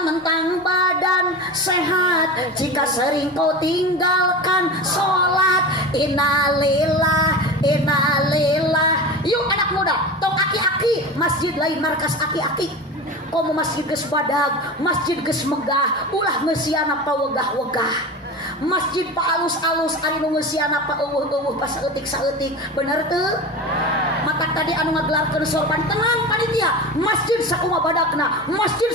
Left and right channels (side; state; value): both; normal; correlation 0.28